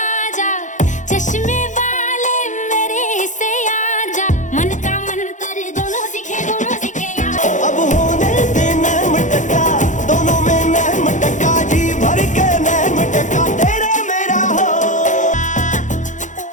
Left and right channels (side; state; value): right; late; 0.36 ms